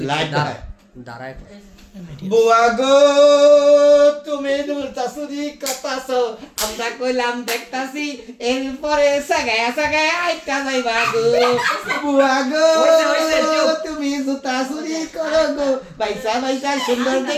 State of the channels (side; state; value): both; identical; correlation 1.00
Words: লাইট দাঁড়ায় বুয়া গো তুমি দুলতাছুরি কথাছো আমরা কইলাম দেখতাছি এরপরে সাগায়া সাগায়া আইতা যাইবা গো বুয়া গো তুমি জুতাছুরি করো গো বাইসা বাইসা সুন্দর